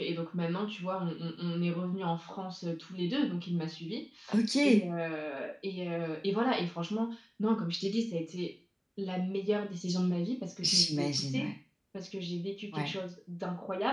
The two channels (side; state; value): both; identical; correlation 1.00